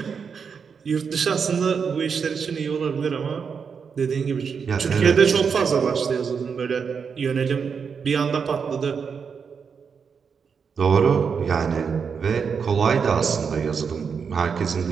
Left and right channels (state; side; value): quieter; left; 6.2 dB